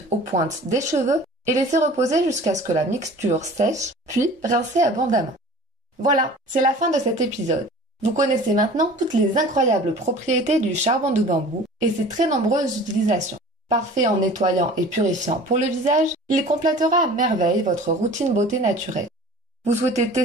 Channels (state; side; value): normal; both; correlation 0.43